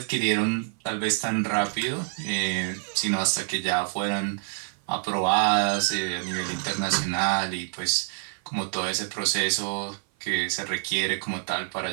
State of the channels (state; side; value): silent; left; 56 dB below the other